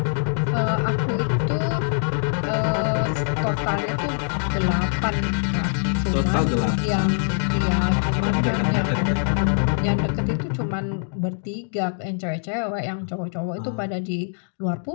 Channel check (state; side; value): silent; right; 63 dB below the other